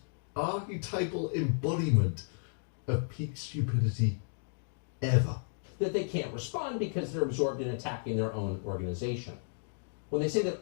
archetypal embodiment of peak stupidity ever. That they can't respond because they're absorbed in attacking their own organization. When they say that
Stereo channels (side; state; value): right; silent; digital silence